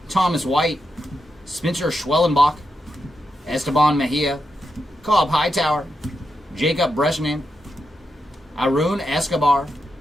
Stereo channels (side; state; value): both; normal; correlation 0.86